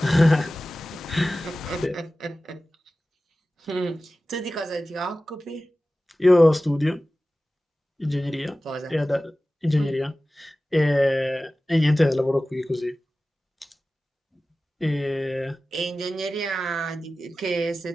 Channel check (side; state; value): both; normal; correlation 0.96